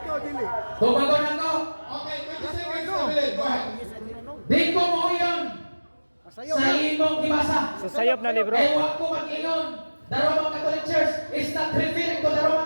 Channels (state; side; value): inverted; both; correlation -1.00